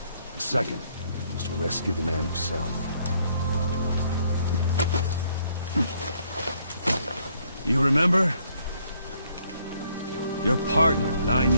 The second was to rescue the man himself. You remember? Your partner, 9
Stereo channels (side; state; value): both; inverted; correlation -0.68